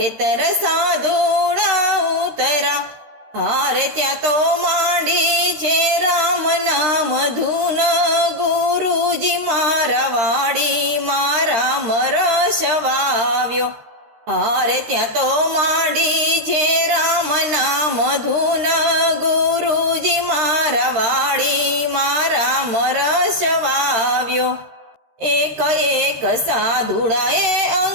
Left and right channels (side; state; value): left; late; 13 ms